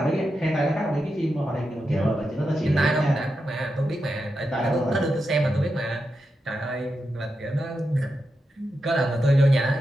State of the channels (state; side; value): normal; both; correlation 0.87